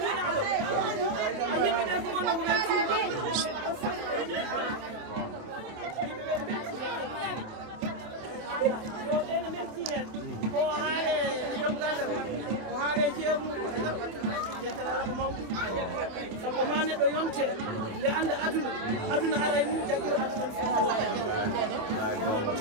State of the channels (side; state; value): left; late; 27 ms